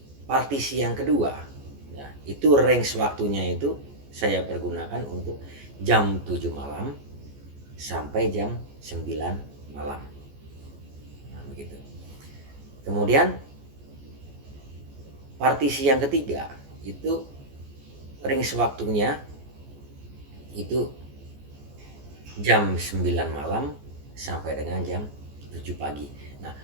partisi yang kedua ya, itu range waktunya itu saya pergunakan untuk jam 7 malam sampai jam 9 malam. Nah, begitu. Kemudian partisi yang ketiga itu range waktunya itu jam 9 malam sampai dengan jam 7 pagi. Nah,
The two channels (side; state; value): left; late; 14 ms